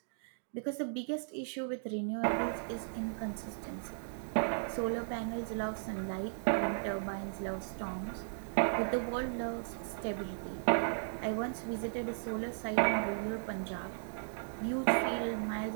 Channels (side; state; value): left; silent; digital silence